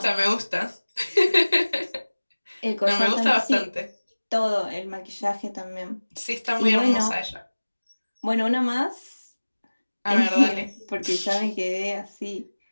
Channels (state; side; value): inverted; both; correlation -1.00